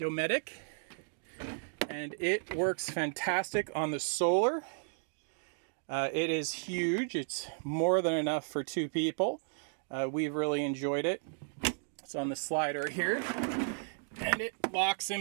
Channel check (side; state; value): left; silent; digital silence